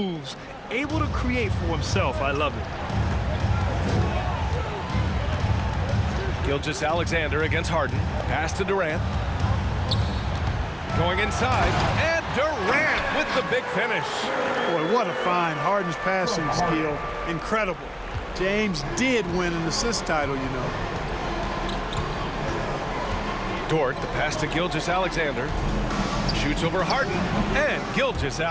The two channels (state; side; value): identical; both; correlation 1.00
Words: Able to create for himself. I love it. Gilgeous-Alexander against Harden. Pass to Durant. Going inside. And Durant with the big finish. Boy, what a find. Harden's passing skill. Incredible. James did win an assist title, you know. Dort, the pass to Gilgeous-Alexander. Shoots over Harden. And